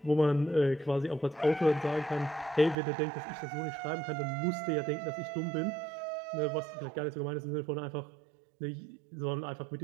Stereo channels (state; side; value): drops out; left; at 2.8 s